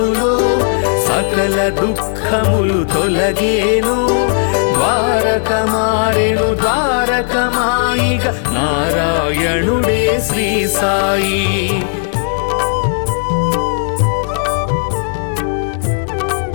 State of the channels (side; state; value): right; silent; 56 dB below the other